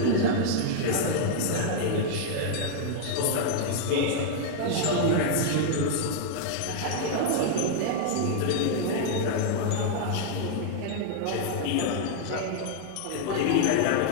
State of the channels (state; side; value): different; both; correlation -0.01